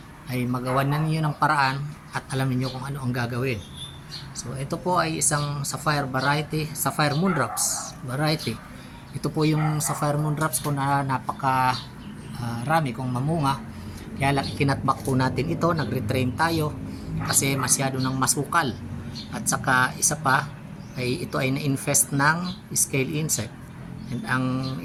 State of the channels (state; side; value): identical; both; correlation 1.00